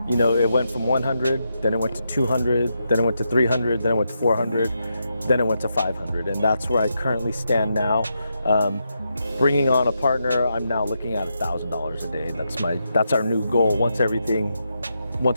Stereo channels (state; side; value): inverted; both; correlation -0.83